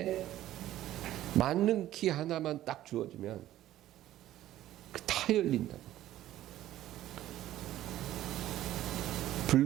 만능 키 하나만 딱 주어주면 다 열린다고.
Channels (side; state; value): left; quieter; 13.7 dB